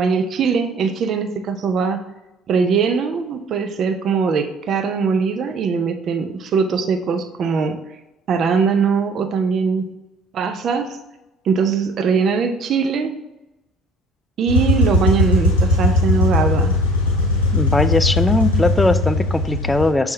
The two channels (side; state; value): both; normal; correlation 0.51